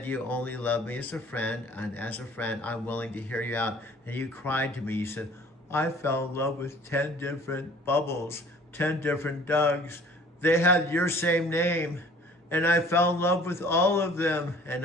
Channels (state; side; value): normal; both; correlation 0.51